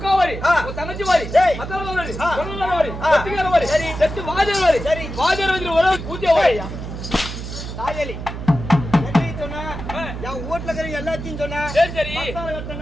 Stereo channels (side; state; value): right; noise; hum, 8 dB below the sound